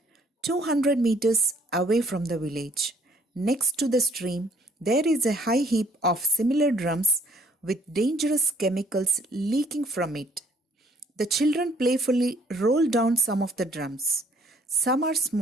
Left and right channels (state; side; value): normal; both; correlation 0.61